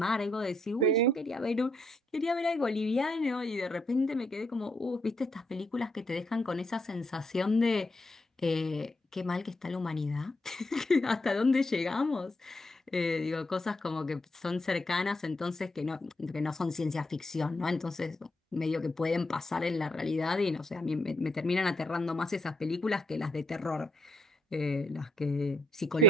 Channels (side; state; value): both; normal; correlation 0.75